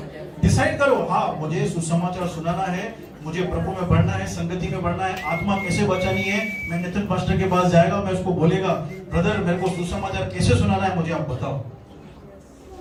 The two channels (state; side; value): identical; both; correlation 1.00